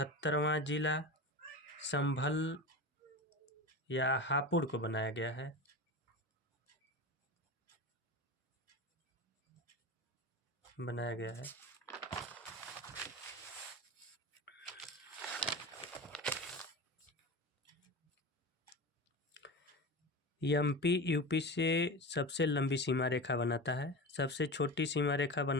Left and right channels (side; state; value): both; normal; correlation 0.26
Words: जिला संभल या हापुड़ को बनाया गया है। एमपी यूपी से सबसे लंबी सीमा रेखा बनाता है, सबसे छोटी सीमा रेखा